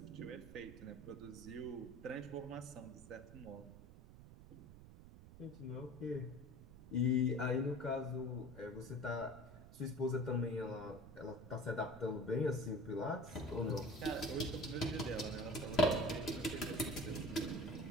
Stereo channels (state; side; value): noise; right; rumble, 16 dB below the sound